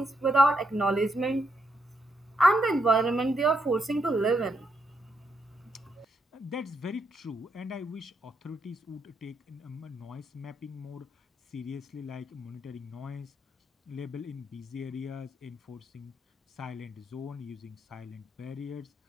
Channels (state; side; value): normal; both; correlation 0.79